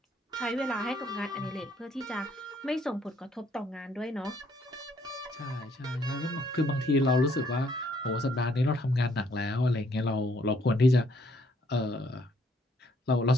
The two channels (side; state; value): both; normal; correlation 0.67